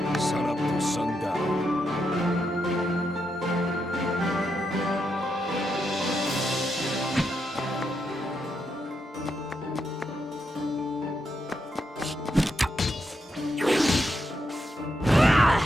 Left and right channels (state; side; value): normal; both; correlation 0.82